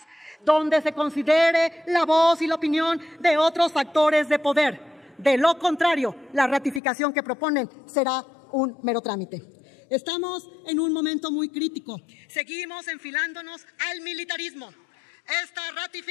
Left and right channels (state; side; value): drops out; right; at 6.8 s